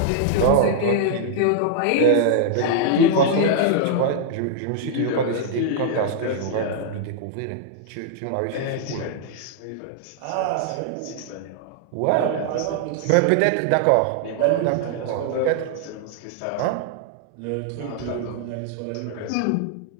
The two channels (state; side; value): different; both; correlation -0.01